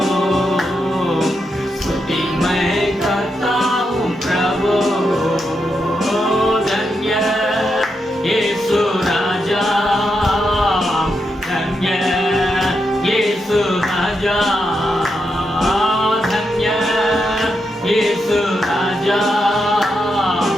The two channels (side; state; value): both; normal; correlation 0.84